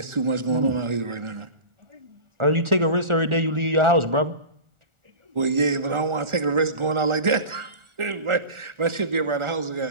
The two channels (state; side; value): late; left; 1.4 ms